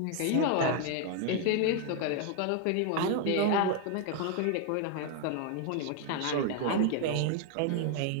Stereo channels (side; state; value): both; different; correlation 0.00